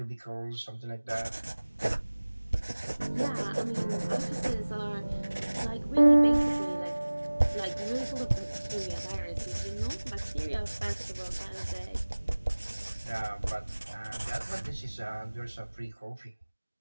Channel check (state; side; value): inverted; both; correlation -1.00